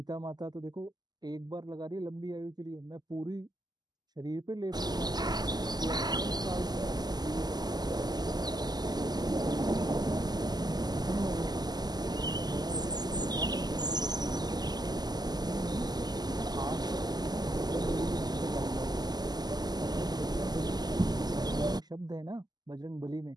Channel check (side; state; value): left; late; 0.20 ms